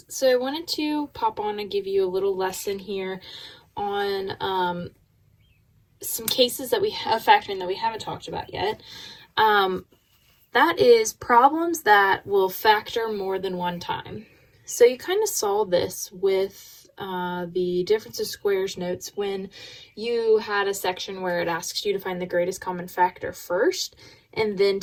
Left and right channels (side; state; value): both; identical; correlation 1.00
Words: so I wanted to pop on and give you a little lesson here on some cases that we have factoring that we haven't talked about yet. That is problems that will factor more than one time. So you kind of saw this with the difference of squares notes when you had a section where it asks you to find the greatest common factor first and then